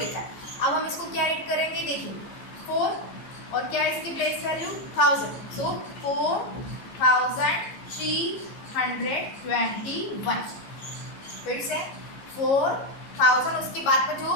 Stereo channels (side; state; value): right; late; 15 ms